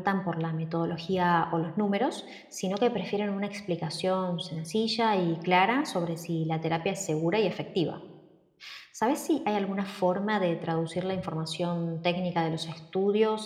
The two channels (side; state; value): both; identical; correlation 1.00